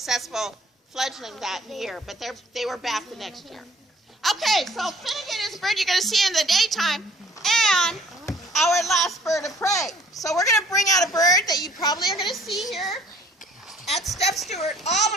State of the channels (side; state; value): both; normal; correlation 0.56